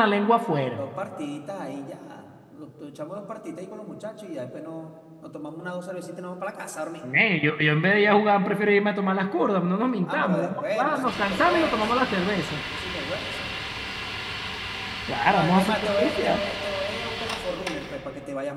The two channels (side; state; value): both; identical; correlation 1.00